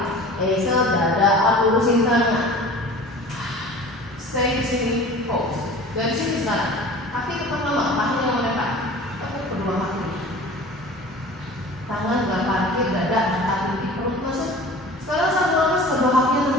exhale dada up lurusin tangan. Stay di sini, pause. Dari sini sekarang. Kaki tetap lama, kaki yang melekat. Tepuk kedua kaki. Tangan gak parkir, dada angkat di perut masuk. Sekarang satu nafas kedua kaki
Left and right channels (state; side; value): normal; both; correlation 0.41